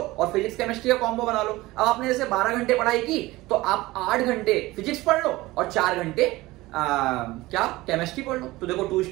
फिजिक्स केमिस्ट्री का कॉम्बो बना लो। अब आपने जैसे 12 घंटे पढ़ाई की तो आप 8 घंटे फिजिक्स पढ़ लो और 4 घंटे क्या केमिस्ट्री पढ़ लो। तो देखो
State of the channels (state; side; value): quieter; left; 19.3 dB